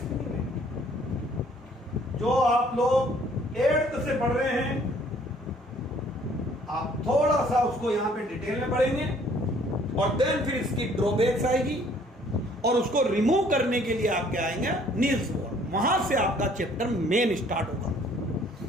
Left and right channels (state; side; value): normal; both; correlation 0.59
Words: जो आप लोग 8th से पढ़ रहे हैं, आप थोड़ा सा उसको यहां पे डिटेल में पढ़ेंगे और देन फिर इसकी ड्रॉबैक्स आएगी और उसको रिमूव करने के लिए आपके आएंगे नील्स बोर। वहां से आपका चैप्टर मेन स्टार्ट होगा।